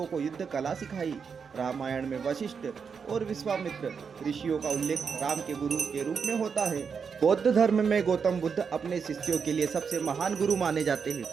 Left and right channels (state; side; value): quieter; left; 6.1 dB